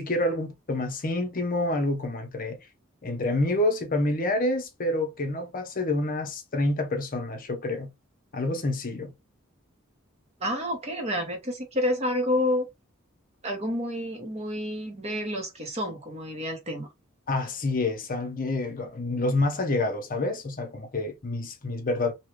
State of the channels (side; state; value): both; normal; correlation 0.38